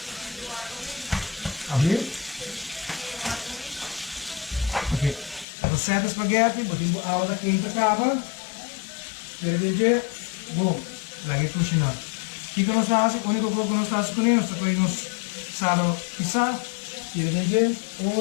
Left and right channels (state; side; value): drops out; right; at 5.5 s